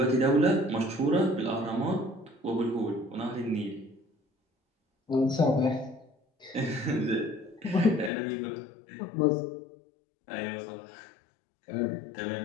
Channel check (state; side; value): drops out; right; at 8.1 s